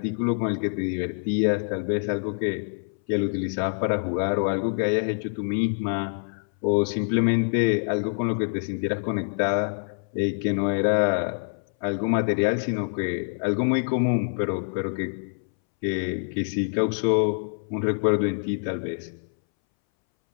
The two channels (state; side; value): silent; right; 61 dB below the other